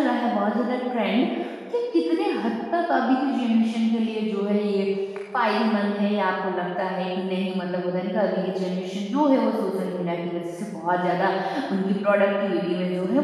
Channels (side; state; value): both; identical; correlation 1.00